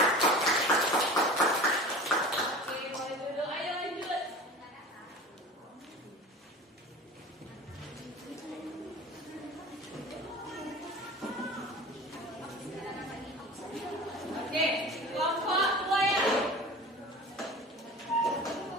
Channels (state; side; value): normal; both; correlation 0.37